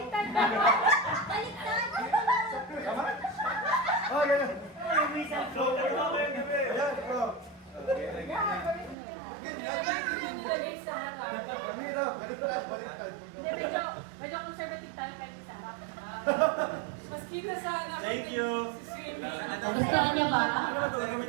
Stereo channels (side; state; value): left; drops out; at 9.0 s